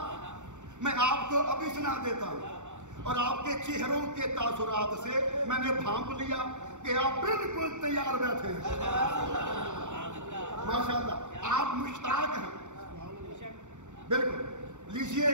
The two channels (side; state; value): left; late; 0.84 ms